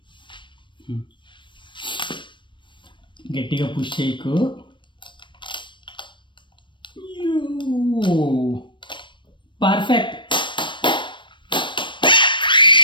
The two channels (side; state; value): right; late; 0.23 ms